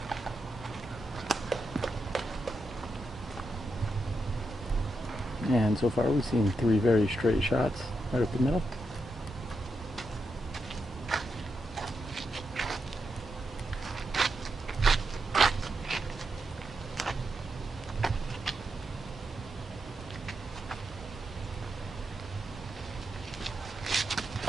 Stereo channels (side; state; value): both; normal; correlation 0.85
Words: And so far we've seen 3 very straight shots right up the middle.